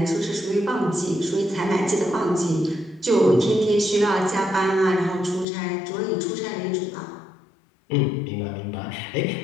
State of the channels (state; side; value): drops out; right; at 5.5 s